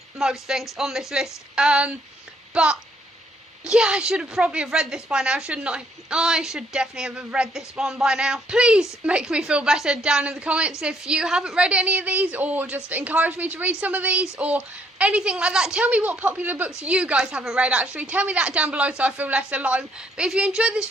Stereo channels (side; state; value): both; normal; correlation 0.67